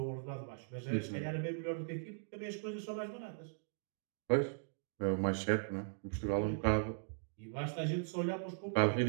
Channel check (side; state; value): left; silent; digital silence